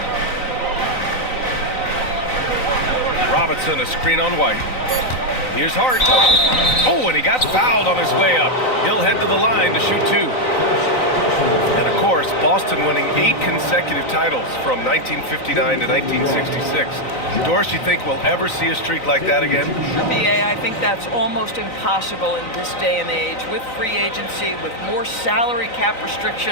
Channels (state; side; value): late; right; 3.9 ms